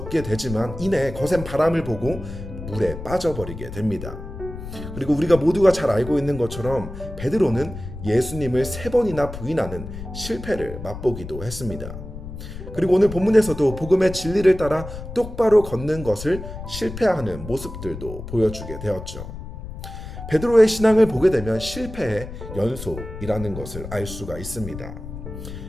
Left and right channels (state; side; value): noise; left; rumble, 10 dB below the sound